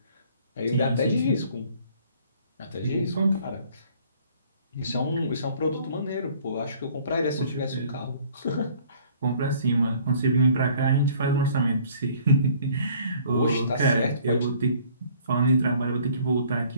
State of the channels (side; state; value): both; inverted; correlation -0.56